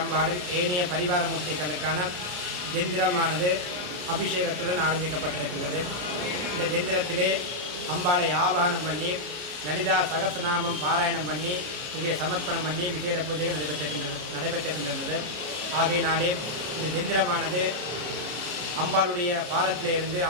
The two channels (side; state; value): left; late; 33 ms